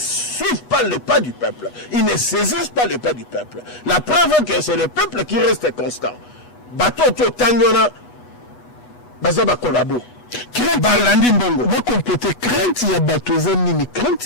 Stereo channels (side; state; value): right; late; 8.2 ms